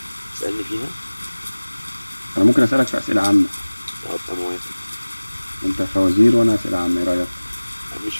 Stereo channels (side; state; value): both; inverted; correlation -1.00